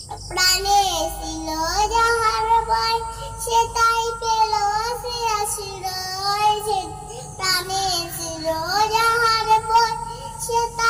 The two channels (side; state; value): both; identical; correlation 1.00